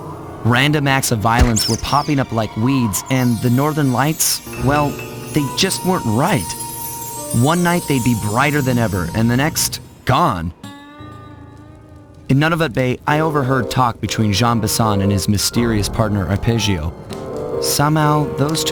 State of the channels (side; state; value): both; identical; correlation 1.00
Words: Random acts of violence were popping up like weeds, and the Northern Lights, well, they just weren't right. One night they'd be brighter than ever, and the next, gone. In Nunavut Bay, I overheard talk between Jean Bison and his mysterious partner Arpeggio. Somehow, those